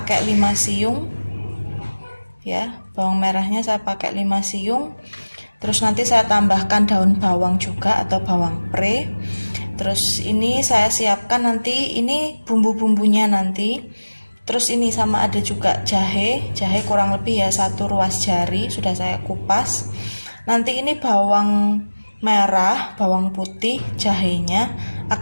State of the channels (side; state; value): both; inverted; correlation -1.00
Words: 5 siung ya, bawang merahnya saya pakai 5 siung. Terus nanti saya tambahkan daun bawang juga atau bawang pre. Terus ini saya siapkan nanti ini bumbu-bumbunya nanti. Terus ini sama ada juga jahe kurang lebih ya 1 ruas jari sudah saya kupas. Nanti ini bawang merah, bawang putih, jahenya